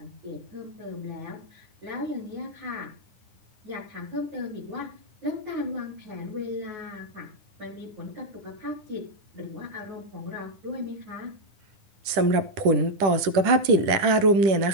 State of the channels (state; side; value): late; left; 10 ms